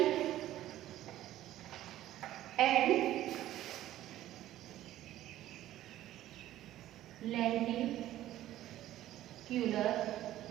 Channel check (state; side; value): quieter; left; 13.7 dB